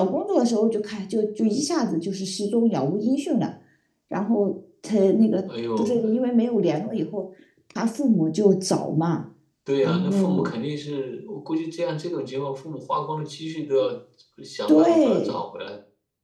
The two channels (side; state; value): both; identical; correlation 1.00